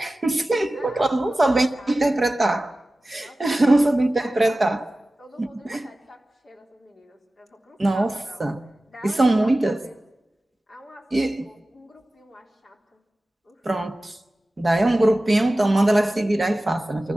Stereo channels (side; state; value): both; normal; correlation 0.96